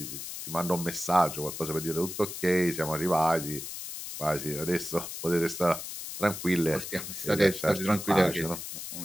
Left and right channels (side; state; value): left; noise; hiss, 8 dB below the sound